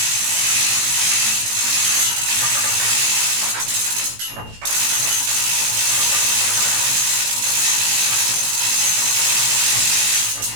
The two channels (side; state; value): left; late; 18 ms